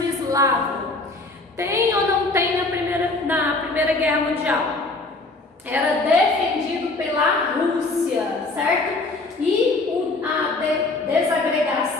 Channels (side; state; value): right; quieter; 3.2 dB